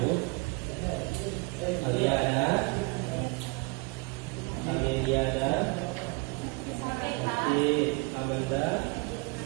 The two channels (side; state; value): left; quieter; 27.9 dB